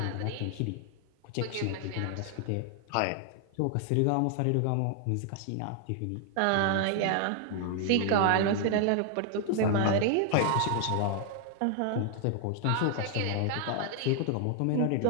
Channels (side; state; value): both; different; correlation 0.00